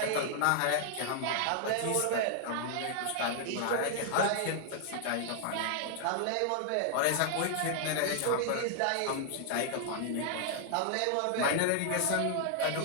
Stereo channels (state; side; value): different; both; correlation -0.01